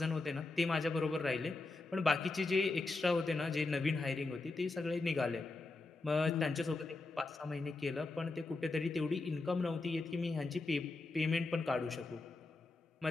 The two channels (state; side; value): quieter; right; 3.4 dB